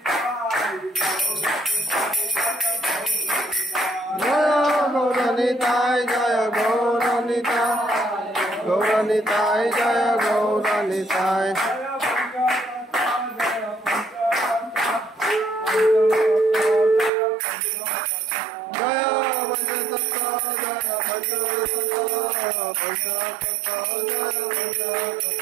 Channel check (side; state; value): left; drops out; at 17.1 s